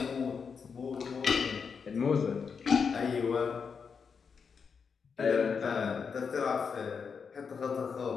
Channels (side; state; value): right; quieter; 5.9 dB